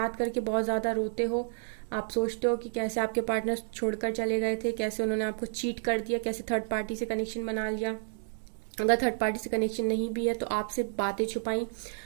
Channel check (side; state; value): left; silent; digital silence